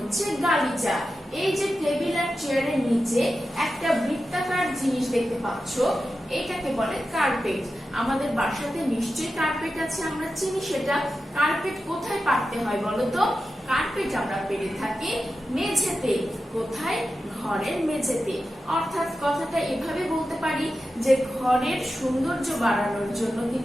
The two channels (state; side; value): normal; both; correlation 0.92